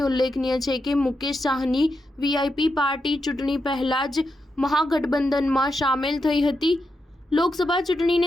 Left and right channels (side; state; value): both; normal; correlation 0.85